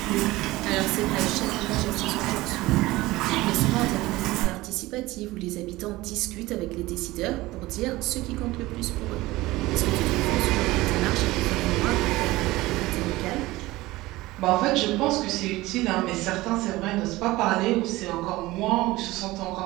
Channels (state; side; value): quieter; left; 19.0 dB